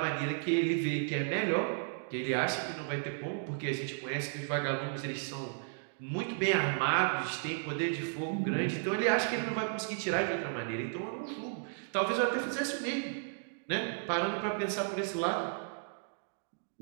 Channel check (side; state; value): left; silent; digital silence